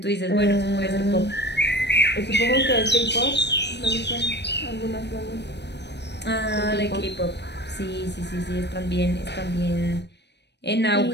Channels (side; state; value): right; late; 0.50 ms